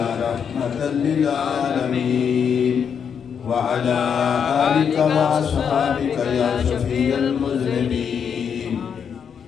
رحمة للعالمين وعلى آلك وصحبك يا شفيع المذنبين.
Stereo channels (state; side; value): quieter; right; 7.3 dB